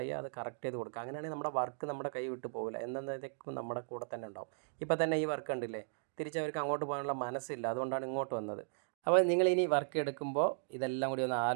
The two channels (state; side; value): silent; left; digital silence